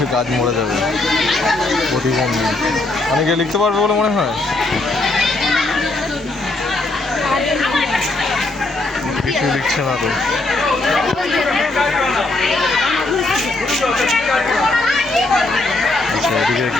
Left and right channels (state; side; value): quieter; right; 3.1 dB